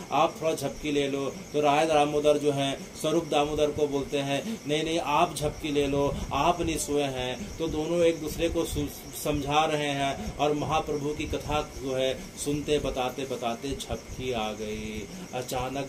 आप थोड़ा झपकी ले लो। तो राय दामोदर जो है स्वरूप दामोदर को बोलते हैं नहीं नहीं आप झपकी ले लो, आप नहीं सोए हैं। तो दोनों एक दूसरे को समझा रहे हैं और महाप्रभु की कथा जो है सुनते बताते बताते झपकी आ गई। अचानक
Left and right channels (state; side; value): identical; both; correlation 1.00